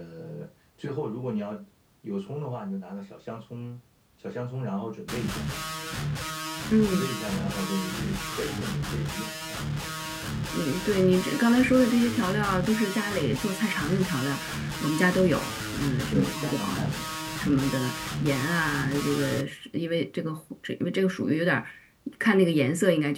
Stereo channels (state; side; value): identical; both; correlation 1.00